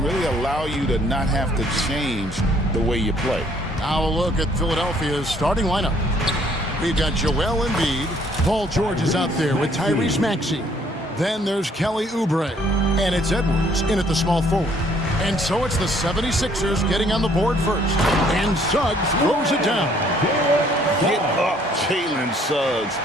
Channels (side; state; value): both; normal; correlation 0.63